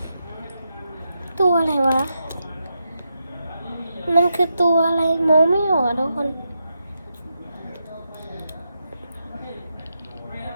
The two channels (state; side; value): inverted; both; correlation -0.85